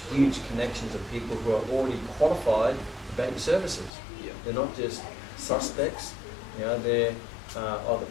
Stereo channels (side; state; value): right; drops out; at 3.9 s